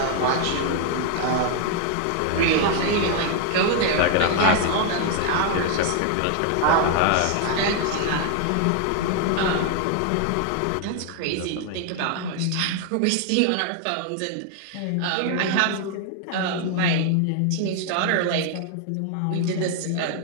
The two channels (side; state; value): both; different; correlation 0.00